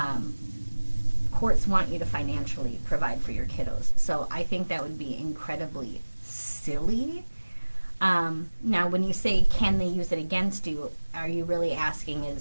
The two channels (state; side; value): inverted; both; correlation -1.00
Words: courts want you to financially provide for your kiddos. So I think that would be incredibly silly Now, when you say, can they use it against you, are you really asking